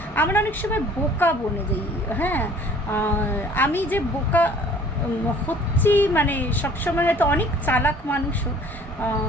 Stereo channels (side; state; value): both; normal; correlation 0.52